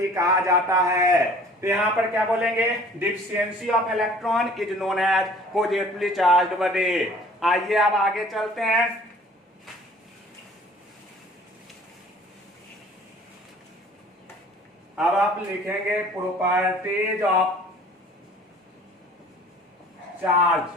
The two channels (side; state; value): both; normal; correlation 0.51